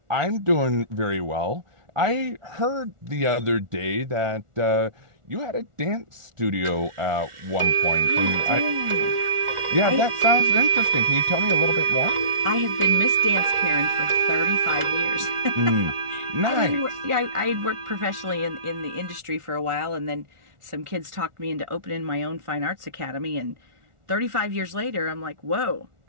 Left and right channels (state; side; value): late; left; 1.4 ms